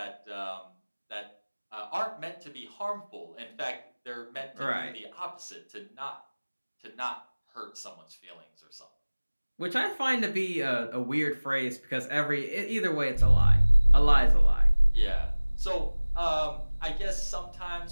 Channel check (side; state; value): both; inverted; correlation -1.00